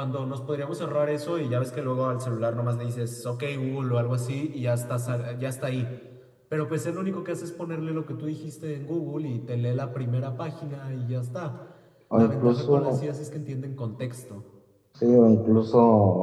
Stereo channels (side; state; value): both; identical; correlation 1.00